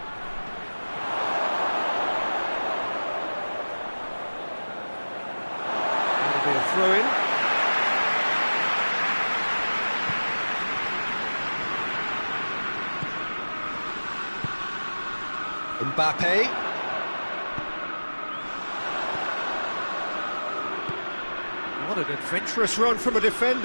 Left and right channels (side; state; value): both; inverted; correlation -1.00